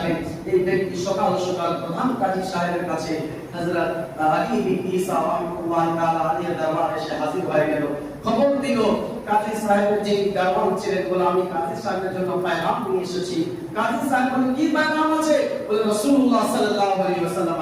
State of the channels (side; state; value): both; identical; correlation 1.00